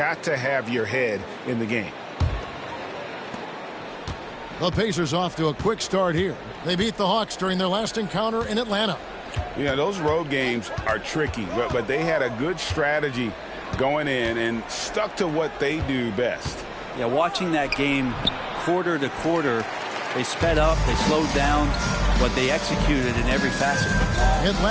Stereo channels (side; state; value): both; identical; correlation 1.00